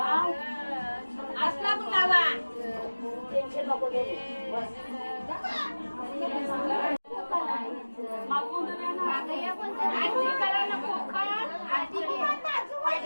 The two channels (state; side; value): inverted; both; correlation -1.00